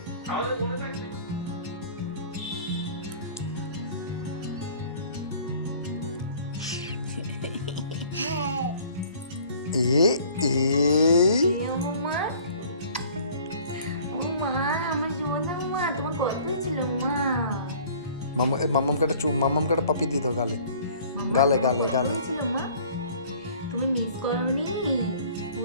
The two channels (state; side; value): inverted; both; correlation -0.51